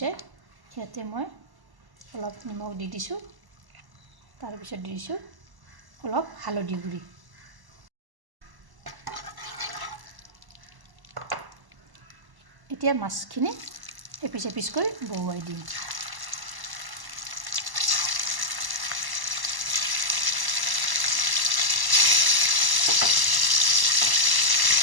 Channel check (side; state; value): left; late; 1.1 ms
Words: ইয়াতে মই অলপ নিমখ দি দিছোঁ। তাৰপিছত দি দিছোঁ অলপ হালধি গুড়ি। এতিয়া মাছখিনি এপিচ এপিচকৈ বহুৱাই দিম।